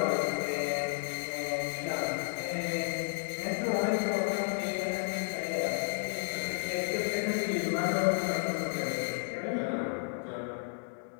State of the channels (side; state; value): right; silent; digital silence